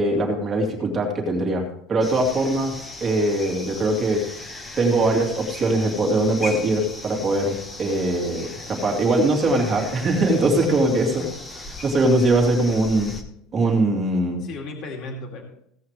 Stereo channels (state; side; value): normal; both; correlation 0.61